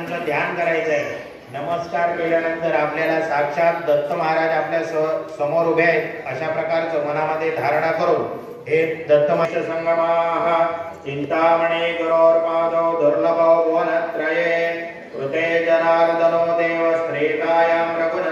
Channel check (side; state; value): both; identical; correlation 1.00